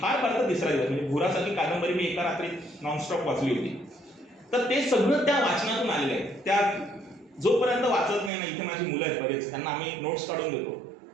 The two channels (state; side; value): drops out; left; at 8.3 s